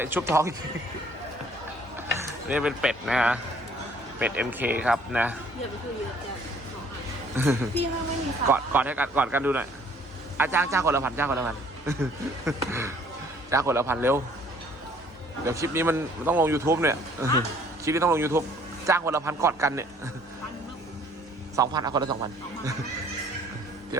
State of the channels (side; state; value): both; normal; correlation 0.58